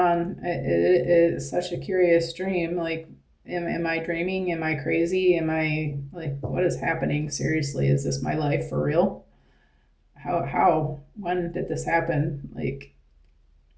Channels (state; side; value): identical; both; correlation 1.00